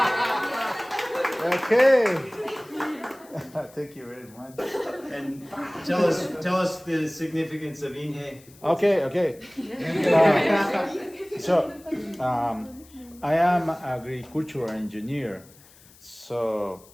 Okay. Thank you very much. And tell us the significance of Inge. Okay. So, I am agricultural engineer. So,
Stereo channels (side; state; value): left; noise; hiss, 25 dB below the sound